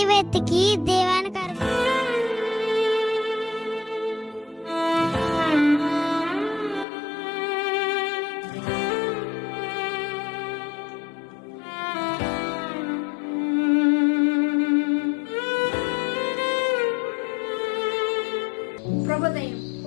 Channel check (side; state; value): right; drops out; at 6.9 s